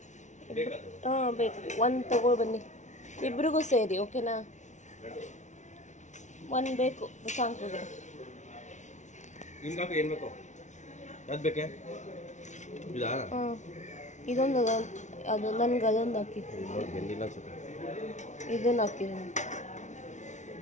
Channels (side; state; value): right; late; 0.35 ms